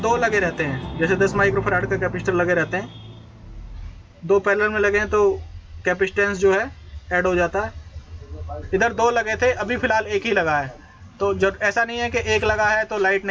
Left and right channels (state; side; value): identical; both; correlation 1.00